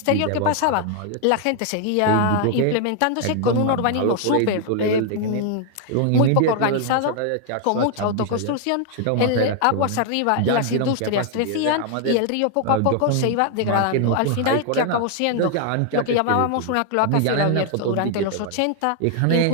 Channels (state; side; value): different; both; correlation 0.00